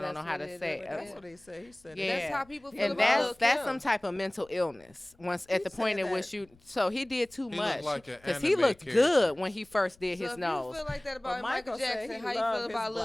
know that's how what to it say is. it. That's what he said. He said Yeah. That's how people feel And about Lil' that's Kim. some type of mental illness. Once at He the point said in which that. you, so he did too He much looked like an because he anime looked character. good when he first did So his if nose. you feel like that But about Michael said Jackson, he how you loved feel his about Lil'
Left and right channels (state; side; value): noise; left; rumble, 29 dB below the sound